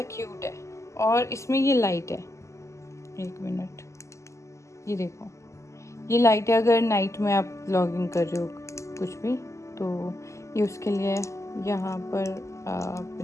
क्यूट है, और इसमें ये लाइट है, 1 मिनट, ये देखो ये लाइट है। अगर नाइट में आप व्लॉगिंग कर रहे हो कुछ भी, तो ये उसके लिए यहाँ पर आप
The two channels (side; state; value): right; late; 0.14 ms